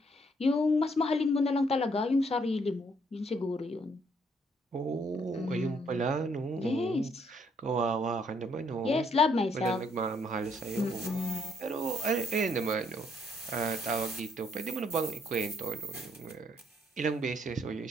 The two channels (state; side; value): normal; both; correlation 0.69